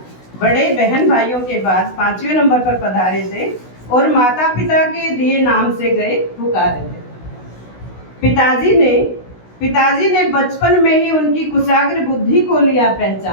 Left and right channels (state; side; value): late; right; 16 ms